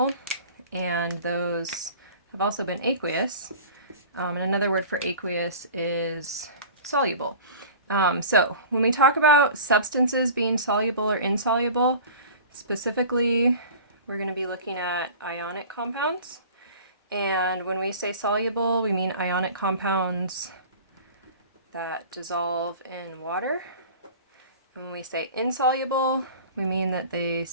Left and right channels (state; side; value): inverted; both; correlation -0.40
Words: and those have also been aqueous. And another word for aqueous is soluble. So when we talk about substances being soluble or insoluble, specifically we're going to be looking at ionic compounds. And when we say soluble, we mean ionic compounds that dissolve in water. When we say insoluble, we mean that they